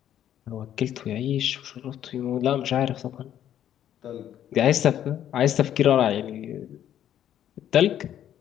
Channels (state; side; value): quieter; right; 10.8 dB